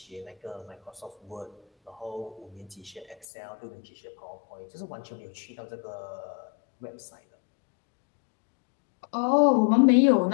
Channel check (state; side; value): drops out; right; at 3.2 s